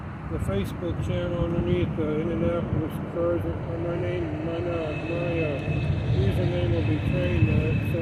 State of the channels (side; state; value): both; identical; correlation 1.00